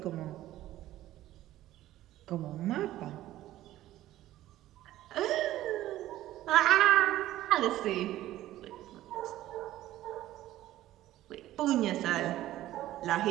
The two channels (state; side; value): quieter; left; 14.5 dB